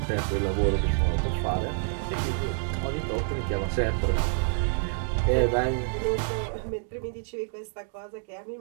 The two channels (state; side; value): silent; left; 60 dB below the other